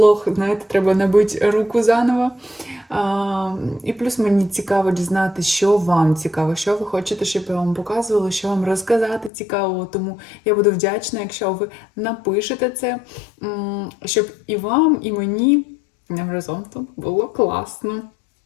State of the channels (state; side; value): drops out; right; at 9.3 s